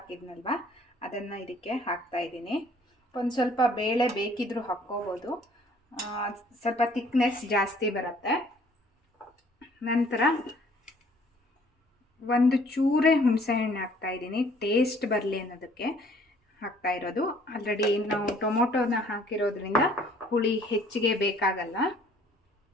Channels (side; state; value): both; normal; correlation 0.58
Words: ಅದನ್ನು ಇದಕ್ಕೆ ಹಾಕ್ತಾ ಇದ್ದೀನಿ. ಒಂದು ಸ್ವಲ್ಪ ಬೇಳೆ ಬೇಕಿದ್ರೂ ಹಾಕ್ಕೋಬೋದು, ಸ್ವಲ್ಪ ಥಿಕ್ನೆಸ್ ಜಾಸ್ತಿ ಬರುತ್ತೆ. ನಂತರ ಒಂದು ಚೂರೇ ಹುಣಸೆಹಣ್ಣು ಹಾಕ್ತಾ ಇದ್ದೀನಿ, ಟೇಸ್ಟ್ ಬರಲಿ ಅನ್ನೋದಕ್ಕೆ ಹಾಕ್ತಾ ಇರೋದು. ಆಲ್ರೆಡಿ ನಾವು ಟೊಮೊಟೊನ ಹಾಕಿರೋದ್ರಿಂದ ಹುಳಿ ಹೆಚ್ಚಿಗೆ ಬೇಕಾಗಲ್ಲ.